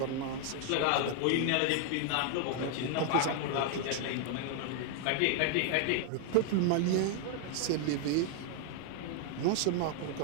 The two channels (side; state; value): both; different; correlation 0.00